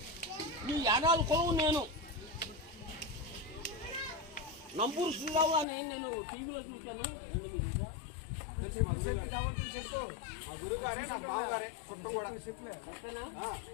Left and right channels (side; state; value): right; drops out; at 5.7 s